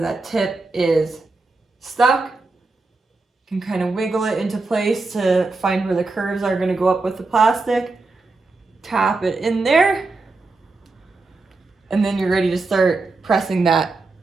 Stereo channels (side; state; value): left; quieter; 3.6 dB